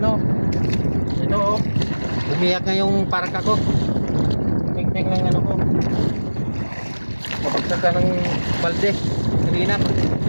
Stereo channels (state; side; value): inverted; both; correlation -1.00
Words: oh. Umiyak nga yung parka ko. Tingting ng ko. Kapagsak ka ng balde. Kanina.